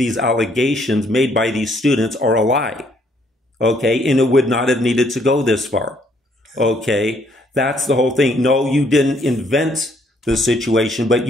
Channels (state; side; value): normal; both; correlation 0.67